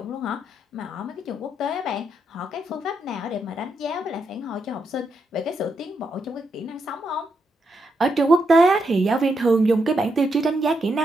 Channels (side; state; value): both; normal; correlation 0.81